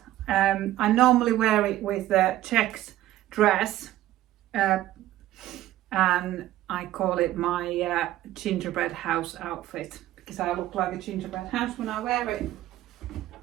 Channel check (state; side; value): quieter; left; 14.3 dB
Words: I normally wear it with a checked dress, and I call it my gingerbread house outfit because I look like a gingerbread house when I wear it.